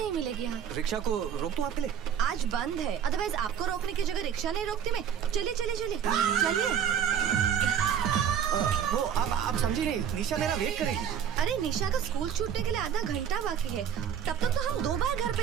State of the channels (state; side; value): quieter; left; 8.5 dB